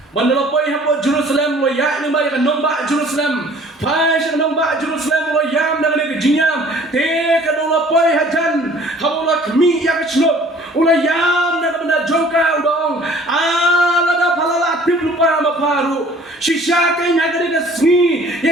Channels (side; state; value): both; normal; correlation 0.52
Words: Mandala poi ha Jerusalem lo ya ni ba ya nomba Jerusalem. Pai sa nomba Jerusalem lo yam na ke jingyam. Te ka no poi ha jan. Habau la kmi ya ke chnot. Ula yam na benda jongka udong ala da palala tip lupa maparu shisha kai na gade ka sni